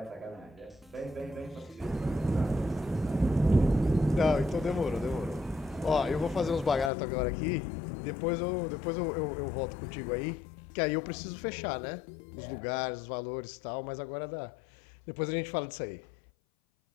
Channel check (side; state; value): right; drops out; at 6.9 s